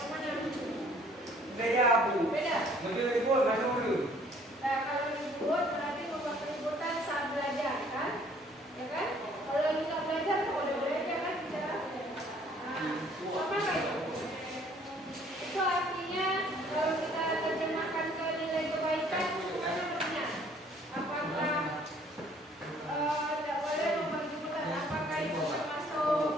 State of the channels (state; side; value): normal; both; correlation 0.59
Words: Nah, kalau ribut berarti membuat keributan saat belajar, kan? Ya kan? Kalau lagi nggak belajar, kok udah belajar kan bicara? Nah, apa itu? Itu artinya kalau kita terjemahkan ke nilai kebaikan, mana artinya? Apakah tidak boleh membuat keributan? Apakah itu